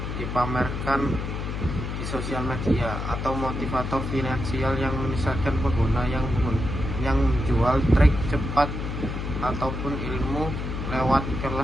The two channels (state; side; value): noise; left; hum, 4 dB below the sound